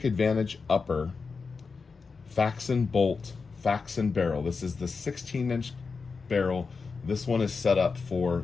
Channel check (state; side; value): quieter; right; 4.8 dB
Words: advantage upper, faxon bolt, faxon barrel. This is the 16-inch barrel. This one is set up